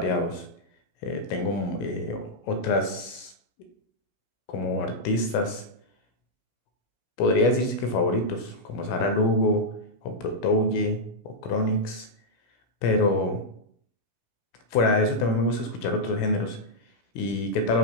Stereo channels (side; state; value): right; late; 17 ms